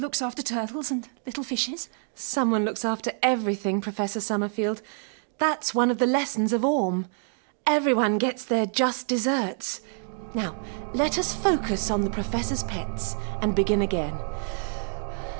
after turtles and little fishes. Someone looks after everything, Professor Summerfield. That's one of the lessons of Orm. Everyone gets their just desserts. Now, let us focus on the Professor's pets and begin again.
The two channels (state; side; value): silent; left; 60 dB below the other